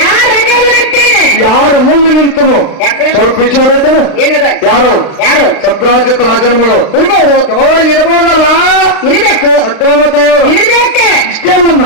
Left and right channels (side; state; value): right; late; 35 ms